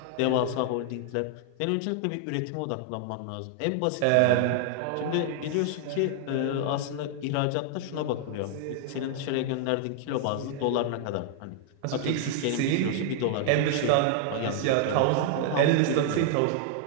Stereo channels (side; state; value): both; different; correlation 0.00